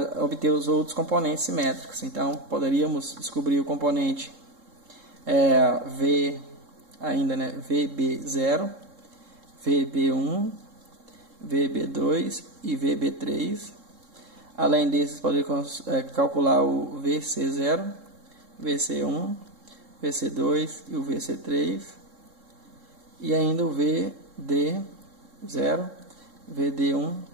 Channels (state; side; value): late; left; 3.7 ms